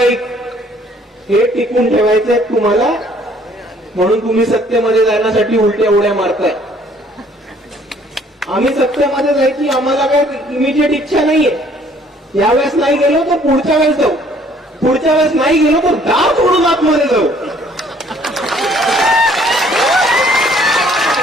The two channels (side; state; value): both; normal; correlation 0.60